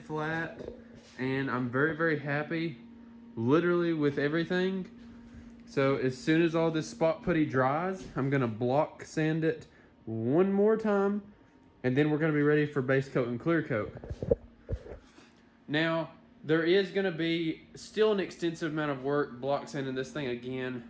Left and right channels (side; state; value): both; identical; correlation 1.00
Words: flat, and I'm very, very happy literally with everything. So as soon as all this spot putty dries, I'm gonna block sand it one more time, and then we're gonna be ready for base coat and clear coat. Now, there is gonna be still an extensive amount of work block sanding this thing